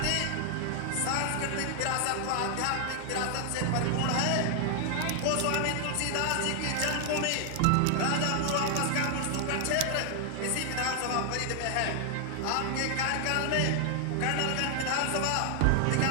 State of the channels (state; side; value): different; both; correlation 0.00